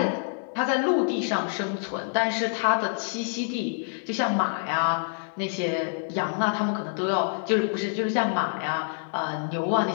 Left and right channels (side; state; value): right; silent; digital silence